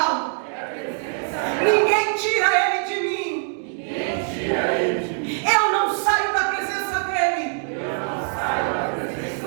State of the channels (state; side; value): silent; left; 63 dB below the other